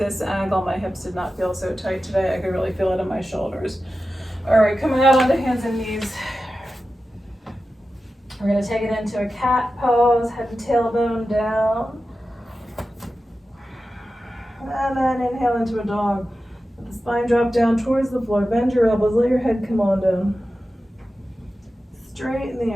angle, my hips did not feel so tight today. I could really feel it in my shoulders. All right, coming out onto hands and knees. We're gonna take it into a cat pose, head and tailbone down. And then inhale into a dog. Let the spine drop down towards the floor. Bend your elbows, let your head come on down. Straighten the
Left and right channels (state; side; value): normal; both; correlation 0.93